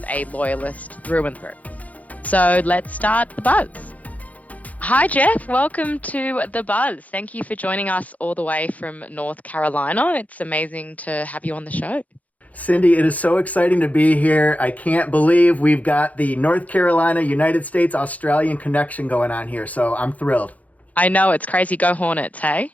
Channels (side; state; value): right; late; 0.072 ms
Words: a loyalist through and through. So let's start the buzz. Hi, Jeff. Welcome to The Buzz. Thank you for joining us all the way from North Carolina. It's amazing to have you on the show. Cindy, it is so exciting to be here. I can't believe we've got the North Carolina, United States, Australian connection going on here. So I'm thrilled. I know, it's crazy. Go Hornets, hey?